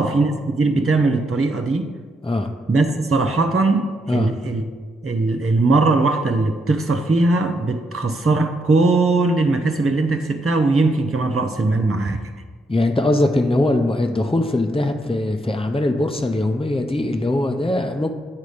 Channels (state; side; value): normal; both; correlation 0.78